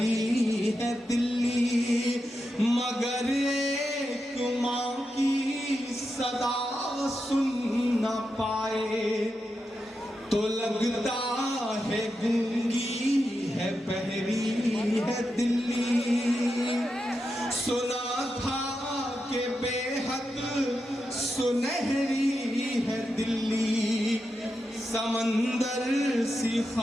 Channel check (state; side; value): normal; both; correlation 0.88